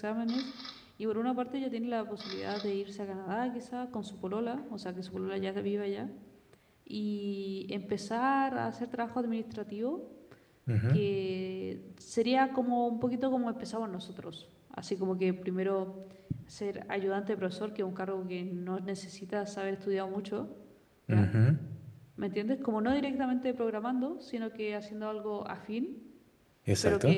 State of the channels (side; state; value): both; identical; correlation 1.00